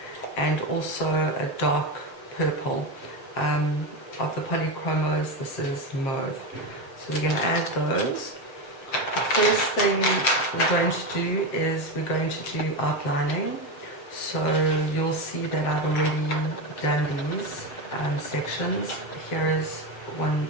and also a dark purple. Of the polychromos, this is mauve. So we're going to add those. The first thing we're going to do is we're going to do outlining. So you'll see that I've already done these sections. Here is one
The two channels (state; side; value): late; right; 7.2 ms